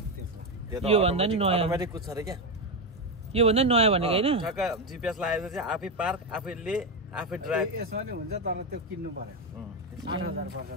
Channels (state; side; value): normal; both; correlation 0.10